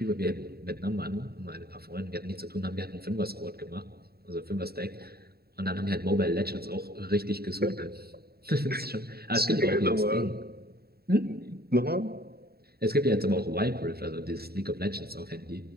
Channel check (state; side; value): late; left; 0.45 ms